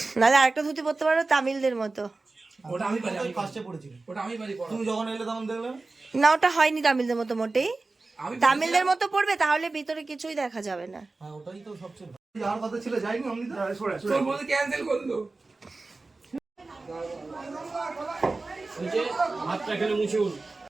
নাহলে আরেকটা ধুতি পরতে পারো তামিলদের মতো। ওটা আমি পারি, আমি ফার্স্টে পড়েছিল। ওটা আমি পারি পড়া। তুমি যখন এলে তখন দেখলে না ওটা হয়নি তামিলদের মতো মোটেই। আমি তামিলদের মতো পড়বে তাহলে ভিতরে কিছুই দেখা যাবে না। হ্যাঁ ওটাই তো সবচেয়ে ভালো। যাওয়ার কথা ছিল যাইনি আমি তো তোর বলতে ক্যান্সেল করলো। হাতটা এখানে মুছুন।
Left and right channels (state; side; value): quieter; left; 3.5 dB